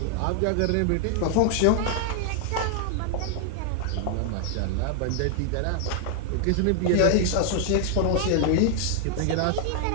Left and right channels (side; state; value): both; different; correlation 0.00